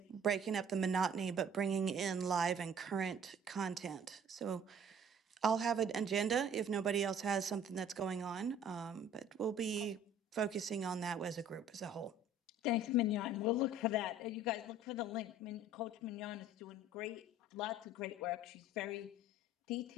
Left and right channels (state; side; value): normal; both; correlation 0.52